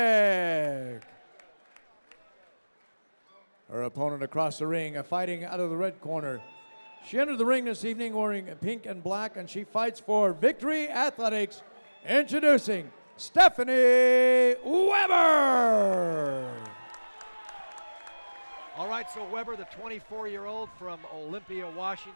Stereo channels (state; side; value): inverted; both; correlation -1.00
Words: Her opponent across the ring, fighting out of the red corner. She entered the ring this evening wearing pink and black, and she fights for Victory Athletics. Introducing Stephanie Weber. All right, so Weber, the 24-year-old from Olympia,